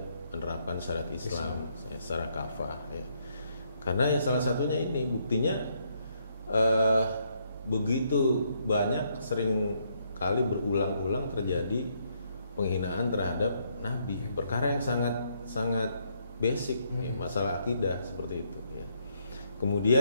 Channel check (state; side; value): inverted; both; correlation -0.73